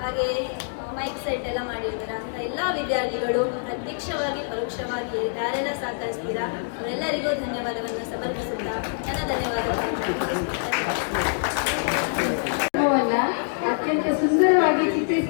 ಹಾಗೆ ಮೈಕ್ ಸೆಟ್ ಎಲ್ಲ ಮಾಡಿರ್ತಾರೆ. ಅಂತ ಎಲ್ಲ ವಿದ್ಯಾರ್ಥಿಗಳು ಪ್ರತ್ಯಕ್ಷವಾಗಿ ಪರೋಕ್ಷವಾಗಿ ಯಾರೆಲ್ಲ ಸಹಕರಿಸ್ತೀರಾ ಅವರೆಲ್ಲರಿಗೂ ಧನ್ಯವಾದವನ್ನು ಸಮರ್ಪಿಸುತ್ತಾ ನನ್ನ ಧನ್ಯವಾದಗಳು. ಅತ್ಯಂತ ಸುಂದರವಾಗಿ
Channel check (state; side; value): silent; right; digital silence